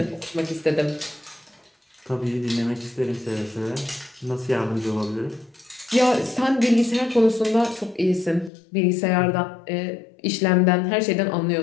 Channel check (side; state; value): right; drops out; at 8.5 s